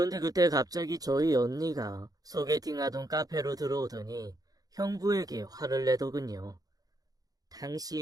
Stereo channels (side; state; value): left; late; 0.18 ms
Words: 그때 갑자기 저희 언니가 소개팅하던 카페로 들어오더니 형부에게 화를 내더군요.